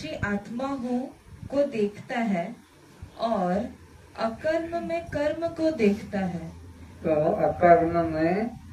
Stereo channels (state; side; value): identical; both; correlation 1.00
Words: आत्मा हूँ को देखता है और अकर्म में कर्म को देखता है। तो अकर्म में